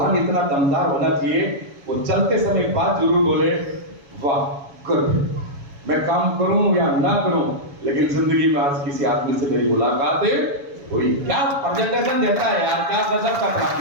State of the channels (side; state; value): left; late; 7.1 ms